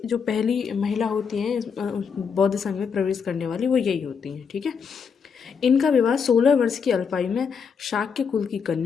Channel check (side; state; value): right; quieter; 6.2 dB